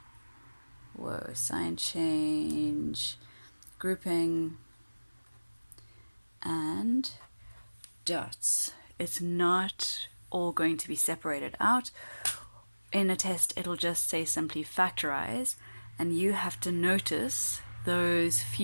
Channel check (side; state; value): both; inverted; correlation -1.00